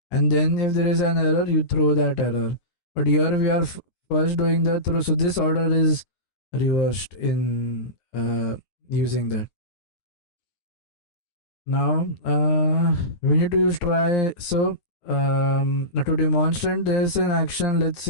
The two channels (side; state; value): right; late; 9.6 ms